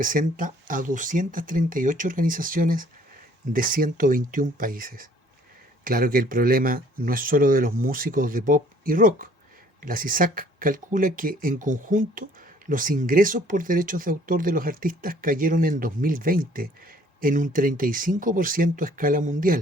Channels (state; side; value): normal; both; correlation 0.58